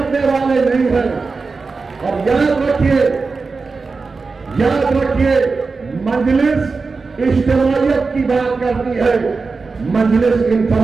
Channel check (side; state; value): left; quieter; 4.3 dB